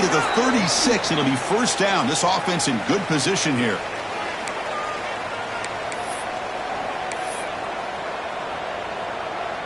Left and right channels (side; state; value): both; identical; correlation 1.00